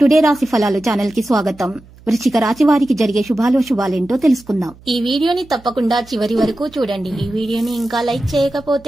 రాశి ఫలాలు ఛానల్ కి స్వాగతం. వృశ్చిక రాశి వారికి జరిగే శుభాలేంటో తెలుసుకుందాం. ఈ వీడియోని తప్పకుండా చివరి వరకు చూడండి. ఈ వీడియోని ఇంకా లైక్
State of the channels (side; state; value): right; noise; hum, 24 dB below the sound